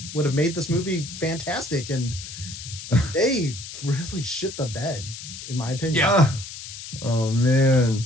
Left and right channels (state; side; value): noise; left; hiss, 11 dB below the sound